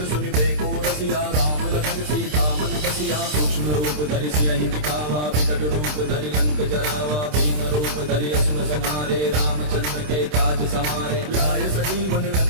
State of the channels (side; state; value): left; late; 27 ms